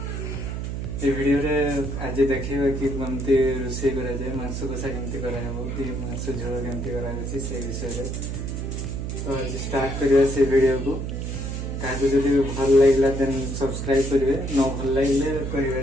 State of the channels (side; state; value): right; noise; hum, 4 dB below the sound